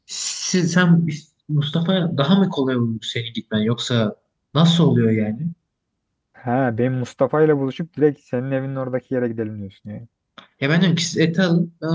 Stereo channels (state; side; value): identical; both; correlation 1.00